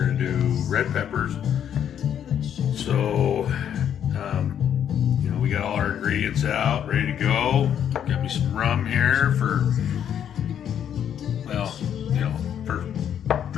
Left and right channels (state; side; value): quieter; right; 9.3 dB